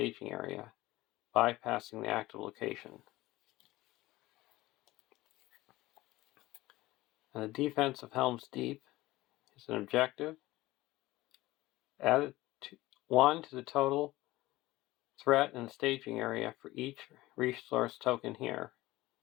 area, bypassing the active location. And the defense of Helm's Deep is an objective. Add 1 to the total threat in the staging area for each resource token here.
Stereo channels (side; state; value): right; quieter; 18.3 dB